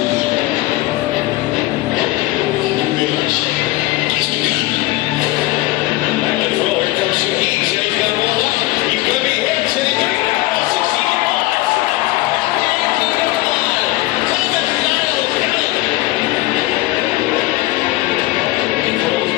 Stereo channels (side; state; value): right; quieter; 18.9 dB